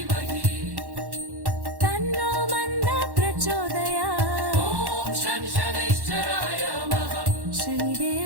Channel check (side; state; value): left; late; 1.1 ms